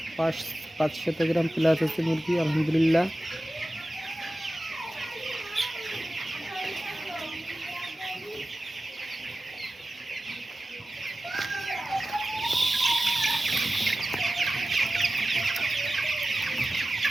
500 গ্রাম প্লাস আছে মুরগি, আলহামদুলিল্লাহ।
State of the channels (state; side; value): normal; both; correlation 0.95